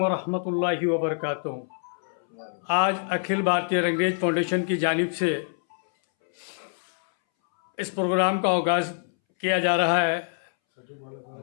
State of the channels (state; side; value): silent; right; 61 dB below the other